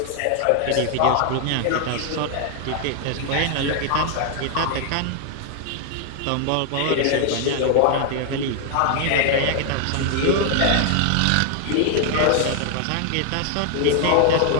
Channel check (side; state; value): both; different; correlation 0.00